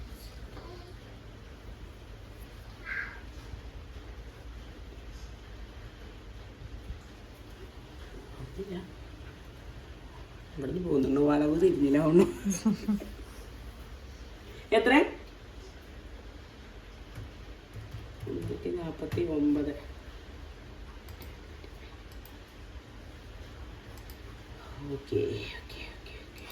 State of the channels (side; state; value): both; identical; correlation 1.00